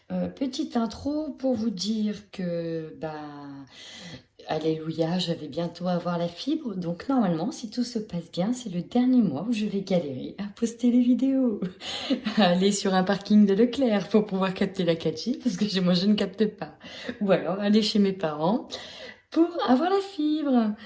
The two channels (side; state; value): both; identical; correlation 1.00